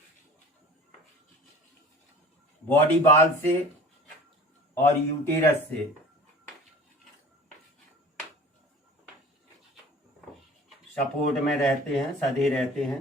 बॉडी बाल से और यूटेरस से सपोर्ट में रहते हैं, सधे रहते हैं।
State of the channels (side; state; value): both; normal; correlation 0.43